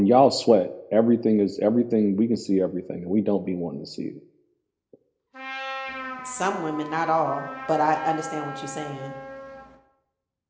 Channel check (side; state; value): both; identical; correlation 1.00